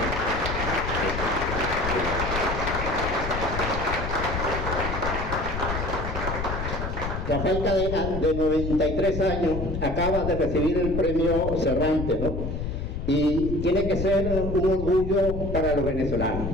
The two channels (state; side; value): noise; left; rumble, 4 dB below the sound